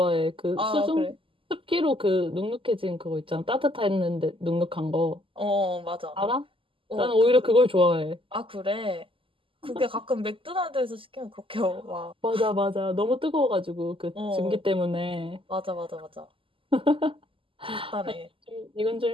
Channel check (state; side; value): late; left; 0.25 ms